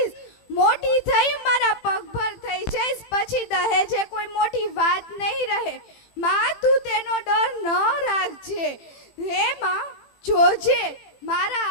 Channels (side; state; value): right; late; 18 ms